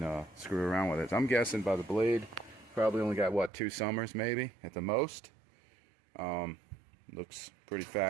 screw around with it. I'm guessing by the blade, probably only got, what, 2 summers maybe at the most. Looks pretty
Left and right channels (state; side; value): drops out; left; at 3.5 s